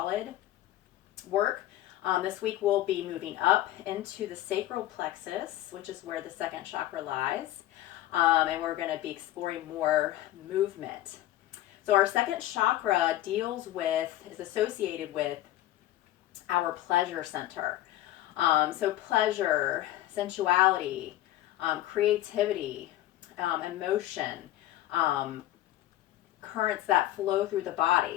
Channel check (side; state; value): right; quieter; 14.6 dB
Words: work, this week we'll be moving up into the sacral plexus, which is where the second chakra lies, and we're going to be exploring more movement. So our second chakra is associated with our pleasure center. So pleasure, sensuality, creativity, emotion, currents that flow through the